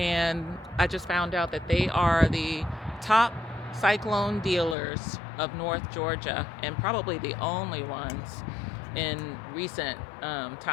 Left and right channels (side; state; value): right; drops out; at 4.8 s